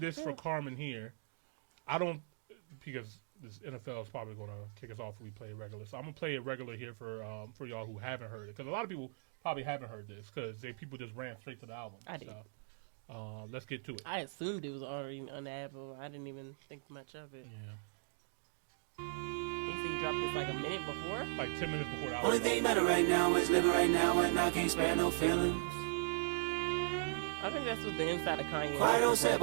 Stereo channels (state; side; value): silent; left; digital silence